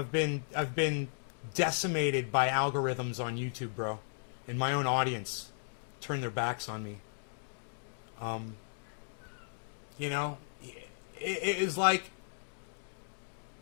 been decimated by algorithms on YouTube, bro. And my own audience turned their backs on me. You know, it is like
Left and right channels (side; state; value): right; silent; digital silence